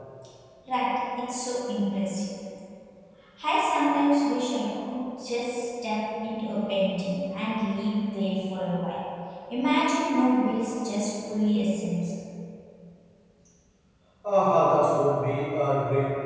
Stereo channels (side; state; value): both; identical; correlation 1.00